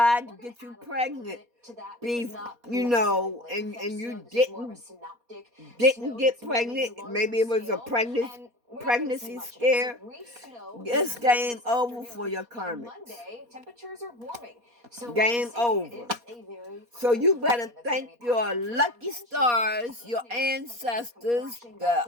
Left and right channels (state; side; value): late; left; 4.2 ms